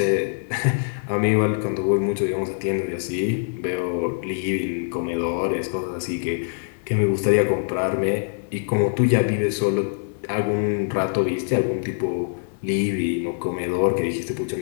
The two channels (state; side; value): silent; right; digital silence